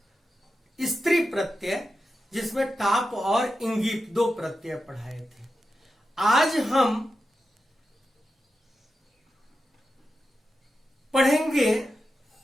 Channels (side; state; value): both; normal; correlation 0.90